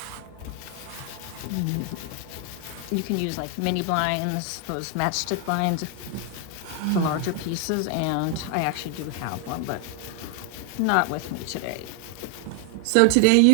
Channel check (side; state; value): both; different; correlation 0.00